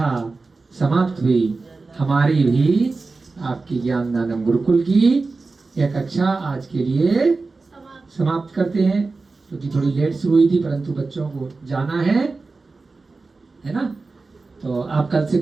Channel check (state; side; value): quieter; left; 3.8 dB